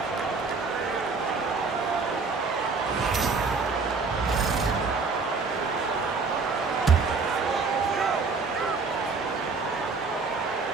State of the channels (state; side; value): quieter; left; 4.5 dB